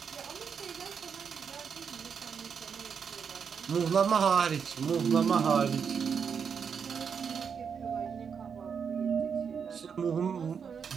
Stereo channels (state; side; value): quieter; left; 6.7 dB